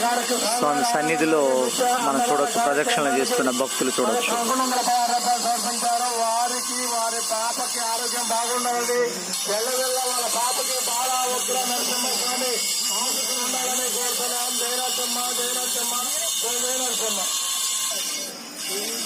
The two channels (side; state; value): both; identical; correlation 1.00